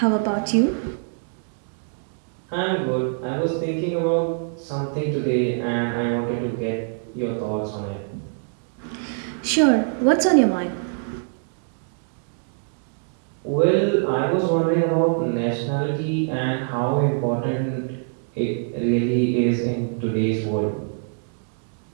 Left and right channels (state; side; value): silent; left; digital silence